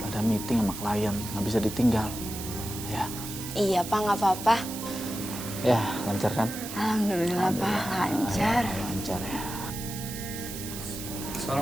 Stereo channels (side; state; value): right; noise; hiss, 9 dB below the sound